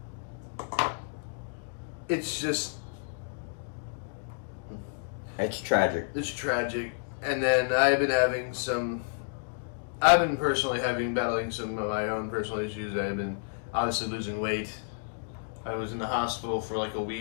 it's just It's tragic. It's tragic. And then I've been personally battling some of my own personal issues. I've been obviously losing weight. I was in the hospital for like a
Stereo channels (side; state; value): right; silent; digital silence